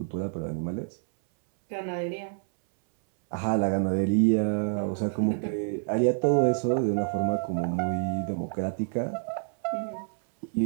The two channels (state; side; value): silent; left; 60 dB below the other